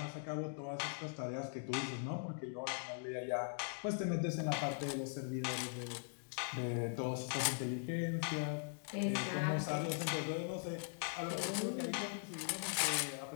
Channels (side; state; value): right; silent; digital silence